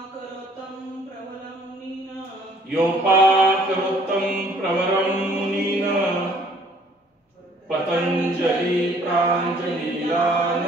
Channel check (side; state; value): both; normal; correlation 0.59